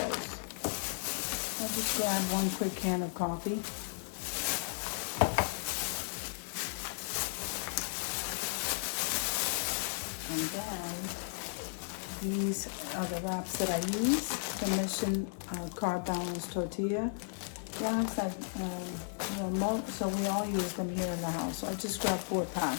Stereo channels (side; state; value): right; silent; 55 dB below the other